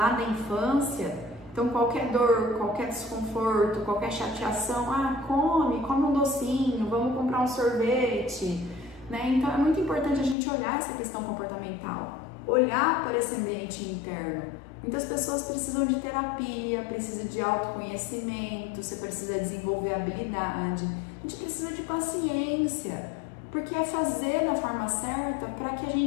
da infância. Então qualquer dor, qualquer desconforto, qualquer chateação, ah, come um docinho, vamos comprar um sorvete, né? Então é muito importante a gente olhar essa questão comportamental. olhar para esse ambiente interno. Muitas pessoas precisam de terapia, precisam de autoconhecimento, você precisa desenvolver habilidade, a gente precisa de paciência, porque é fazer da forma certa para que a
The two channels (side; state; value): right; drops out; at 10.4 s